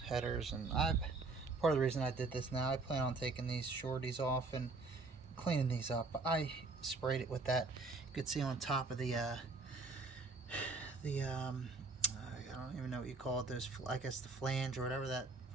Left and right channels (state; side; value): quieter; left; 3.7 dB